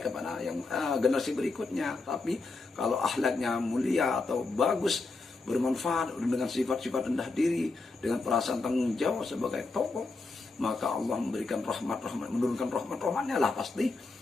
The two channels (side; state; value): right; quieter; 3.7 dB